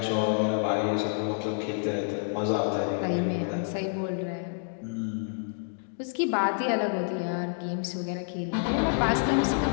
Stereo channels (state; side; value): silent; right; digital silence